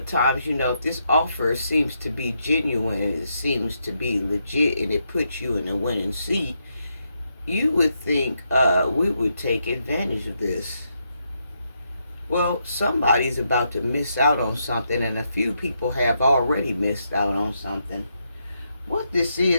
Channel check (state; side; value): inverted; both; correlation -0.80